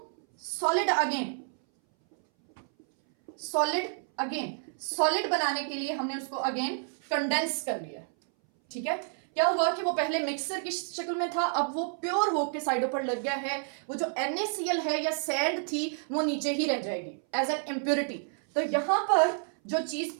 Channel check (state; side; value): silent; left; 58 dB below the other